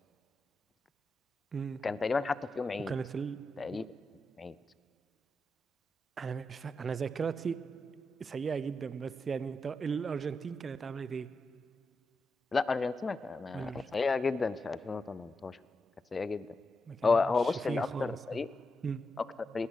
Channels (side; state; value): both; normal; correlation 0.87